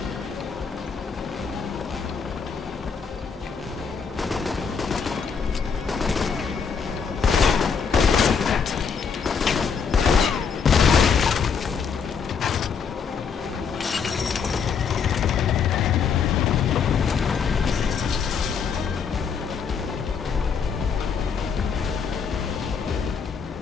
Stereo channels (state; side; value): quieter; right; 6.2 dB